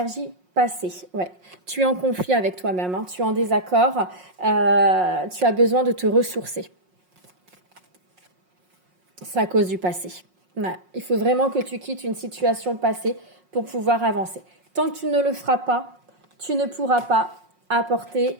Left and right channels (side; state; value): left; late; 5.5 ms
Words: passées. Ouais. Tu es en conflit avec toi-même, hein. Tu es en désaccord, tu as besoin de te ressourcer. C'est à cause du passé. Ouais. Il faut vraiment que tu quittes une situation passée pour pouvoir avancer. Tant que tu ne le feras pas, tu ne pourras pas